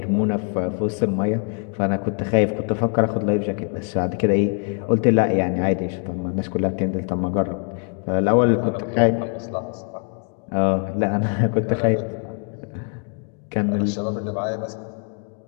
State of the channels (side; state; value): right; quieter; 38.9 dB